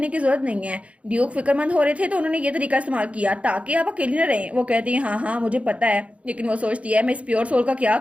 की जरूरत नहीं है। ड्यूक फिक्रमंद हो रहे थे तो उन्होंने ये तरीका इस्तेमाल किया ताकि आप अकेले न रहें। वो कहती है हाँ हाँ मुझे पता है, लेकिन वो सोचती है मैं इस प्योर सोल का क्या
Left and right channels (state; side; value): late; left; 0.064 ms